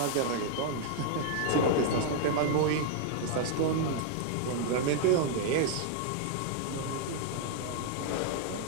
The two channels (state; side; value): different; both; correlation -0.01